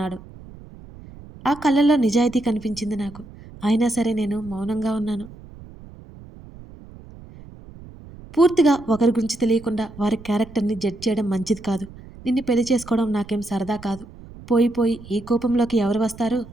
ఆ కళ్ళల్లో నిజాయితీ కనిపించింది నాకు. అయినా సరే నేను మౌనంగా ఉన్నాను. పూర్తిగా ఒకరి గురించి తెలియకుండా వారి క్యారెక్టర్ని జడ్జ్ చేయడం మంచిది కాదు. నిన్ను పెళ్లి చేసుకోవడం నాకేం సరదా కాదు. పోయి పోయి ఈ కోపంలోకి ఎవరు వస్తారు?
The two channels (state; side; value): noise; right; rumble, 18 dB below the sound